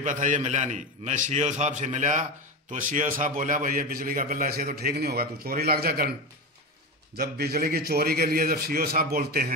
था, ये मिला नहीं। मैं सीओ साहब से मिला तो सीओ साहब बोला भाई ये बिजली का बिल ऐसे तो ठीक नहीं होगा, तू चोरी लग जा कर। जब बिजली की चोरी के लिए जब सीओ साहब बोलते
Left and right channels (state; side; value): normal; both; correlation 0.20